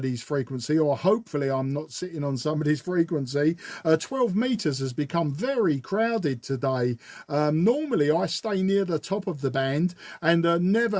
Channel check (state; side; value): identical; both; correlation 1.00